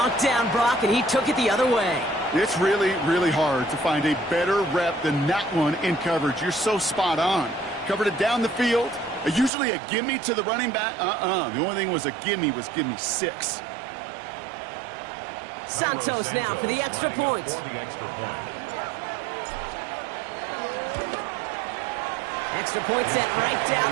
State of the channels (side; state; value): left; drops out; at 9.5 s